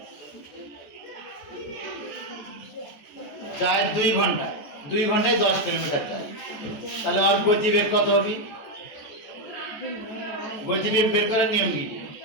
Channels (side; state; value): right; late; 14 ms